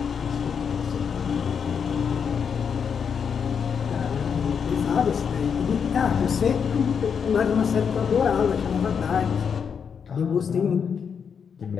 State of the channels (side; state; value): right; quieter; 6.8 dB